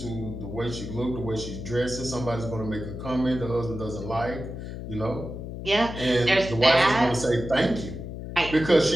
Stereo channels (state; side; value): noise; left; hum, 8 dB below the sound